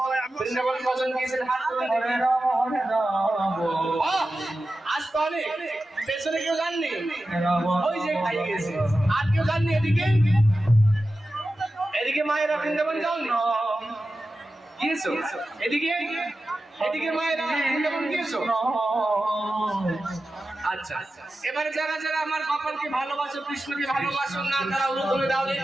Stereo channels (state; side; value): normal; both; correlation 0.93